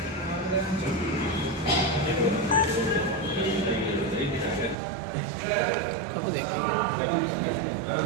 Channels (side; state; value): left; drops out; at 4.8 s